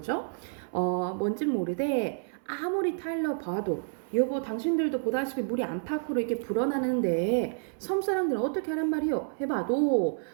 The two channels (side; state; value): left; silent; 58 dB below the other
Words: 뭔진 모르되 아무리 타일러 봐도 여보 당신들도 보다시피 물이 안팎으로 이렇게 불어나는데 섬 사람들은 어떻게 하란 말이요? 해봐도